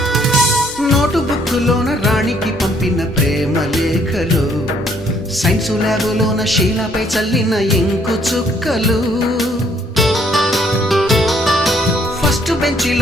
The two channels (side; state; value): both; normal; correlation 0.65